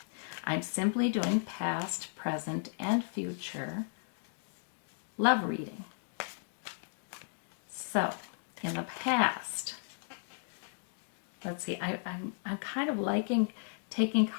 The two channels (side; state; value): right; silent; digital silence